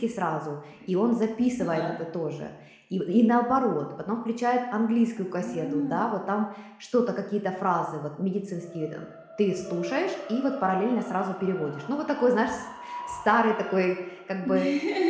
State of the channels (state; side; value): identical; both; correlation 1.00